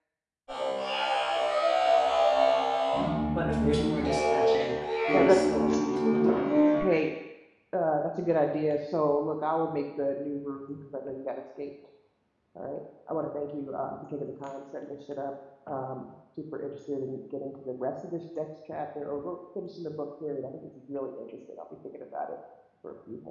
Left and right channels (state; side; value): identical; both; correlation 1.00